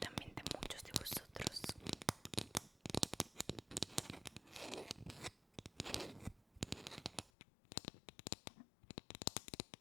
muchos de vosotros.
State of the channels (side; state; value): right; drops out; at 7.3 s